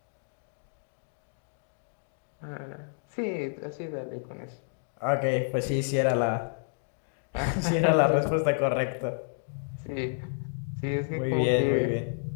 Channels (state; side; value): silent; right; digital silence